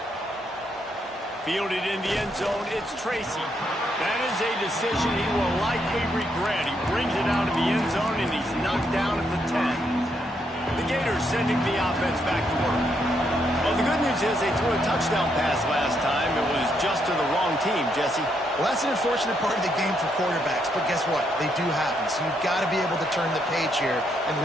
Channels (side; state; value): both; normal; correlation 0.76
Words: Fielded in the end zone, it's Tracy. That is a decision he will likely regret. He brings it out of the end zone, and he's knocked down at the 10. The Gators sending the offense back to work. Well, the good news is they threw a touchdown pass last time. It was just to the wrong team, Jesse. Well, that's an unfortunate part of the game for quarterbacks, but guess what? They do happen, so you've got to be able to turn the page here and